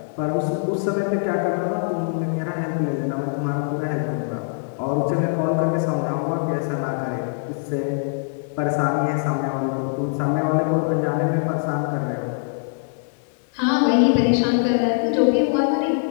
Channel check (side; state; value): right; silent; digital silence